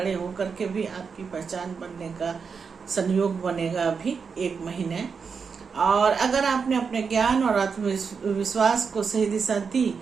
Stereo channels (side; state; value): left; quieter; 5.7 dB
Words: होकर के भी आपकी पहचान बनने का संयोग बनेगा अभी 1 महीने। और अगर आपने अपने ज्ञान और आत्मविश्वास को सही दिशा दी